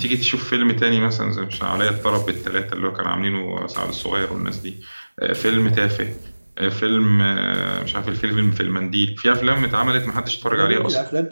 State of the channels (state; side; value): inverted; both; correlation -1.00